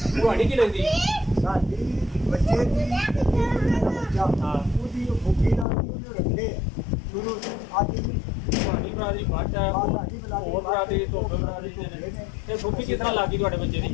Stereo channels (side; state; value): right; drops out; at 5.7 s